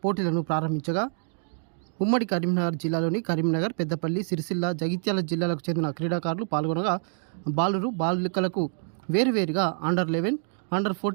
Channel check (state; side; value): silent; left; digital silence